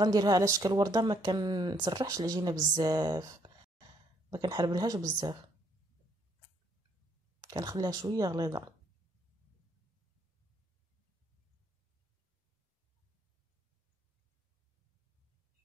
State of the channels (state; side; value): normal; both; correlation 0.69